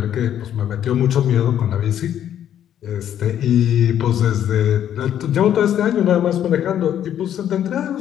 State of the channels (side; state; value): right; quieter; 10.3 dB